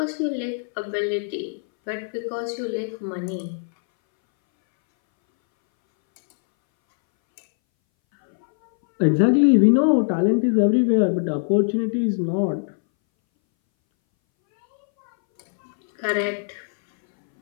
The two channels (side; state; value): right; silent; 62 dB below the other